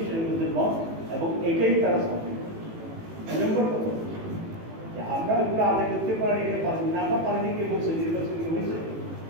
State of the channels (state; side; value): late; left; 18 ms